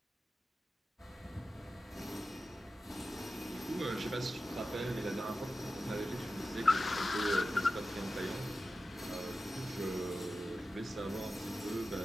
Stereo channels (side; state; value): both; normal; correlation 0.93